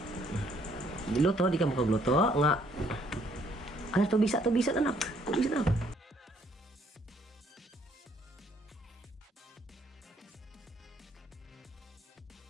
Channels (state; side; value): normal; both; correlation 0.66